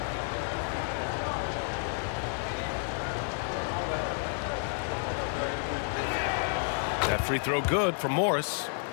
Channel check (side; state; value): right; silent; 57 dB below the other